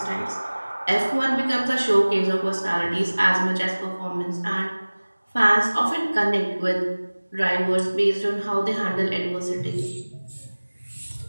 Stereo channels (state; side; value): inverted; both; correlation -1.00